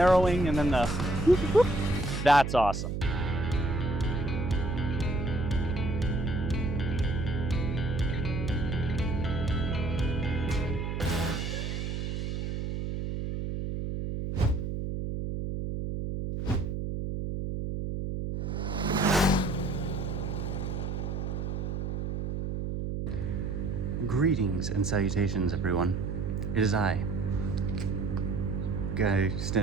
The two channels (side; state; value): right; noise; hum, 2 dB below the sound